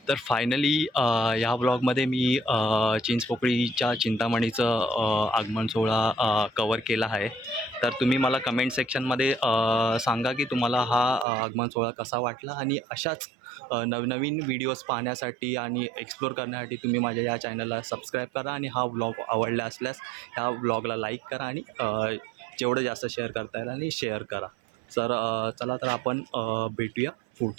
तर फायनली ह्या ब्लॉगमध्ये मी चिंचपोकळीच्या चिंतामणीचं आगमन सोहळा कवर केला आहे. तर तुम्ही मला कमेंट सेक्शनमध्ये सांगा की तुम्हाला हा आगमन सोहळा कसा वाटला, आणि अशाच नवनवीन व्हिडिओज पाहण्यासाठी आणि एक्सप्लोर करण्यासाठी तुम्ही माझ्या या चॅनलला सबस्क्राईब करा, आणि हा व्लॉग आवडला असल्यास ह्या व्लॉगला लाईक करा, आणि जेवढं जास्त शेअर करता येईल आणि शेअर करा. तर चला तर आपण भेटूया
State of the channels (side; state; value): left; drops out; at 11.2 s